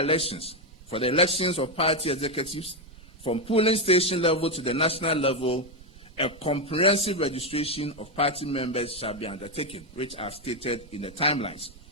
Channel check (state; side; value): normal; both; correlation 0.06